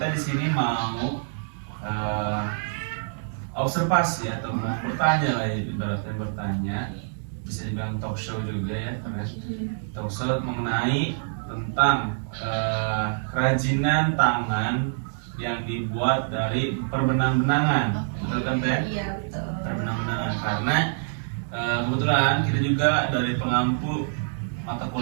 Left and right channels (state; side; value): silent; left; digital silence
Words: di sini mau observasi atau mau bertanya lah, ibaratnya bertanya, bisa dibilang talk show juga ya, karena talk show mengenai tentang kerajinan tangan yang dibuat dari perbenang-benangan, betul kan Teh? Iya, betul. Perbenang-benangan, karena kebetulan kita juga dari pengampu mata